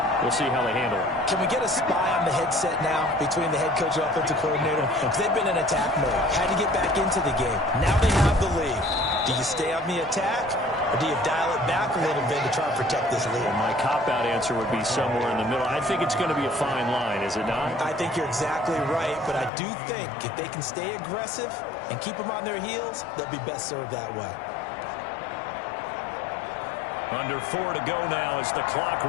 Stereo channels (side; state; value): right; drops out; at 19.5 s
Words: We'll see how they handle it. Can we get a spy on the headset now between the head coach and offensive coordinator? Because they've been in attack mode. Had to get back into the game. Now they have the lead. Do you stay on the attack, or do you dial it back a little bit to try and protect this lead? Well, my cop-out answer would be somewhere in the middle. I think it's going to be a fine line, is it not? I think you're exactly right, but I do think if they can stay aggressive and keep them on their heels, they'll be best served that way. Under 4 to go now as the clock